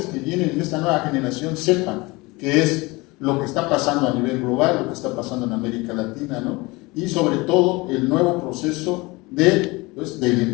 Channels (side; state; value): right; quieter; 23.6 dB